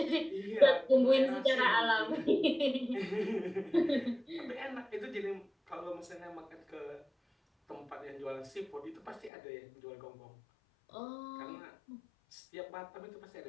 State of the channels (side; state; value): right; drops out; at 9.3 s